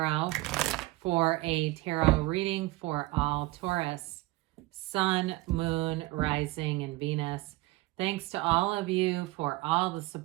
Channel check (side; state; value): left; quieter; 19.9 dB